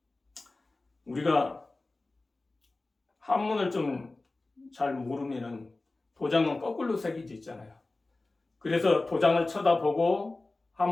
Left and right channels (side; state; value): right; quieter; 3.2 dB